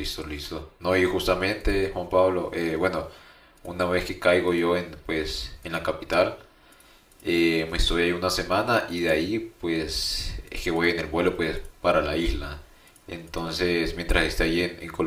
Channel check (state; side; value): identical; both; correlation 1.00